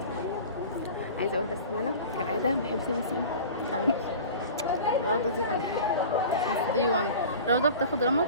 عايزة اقول بس ان انا كالعادة ما بحبش النسيم. روضة دي قلبي. دي 1 روضة بتاخد رمض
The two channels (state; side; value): inverted; both; correlation -0.39